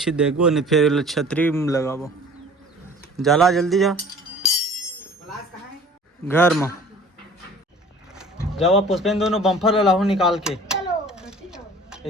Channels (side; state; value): both; normal; correlation 0.47